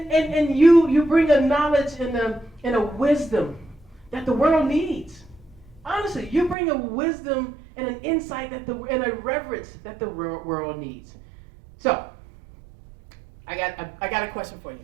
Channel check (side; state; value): left; drops out; at 6.6 s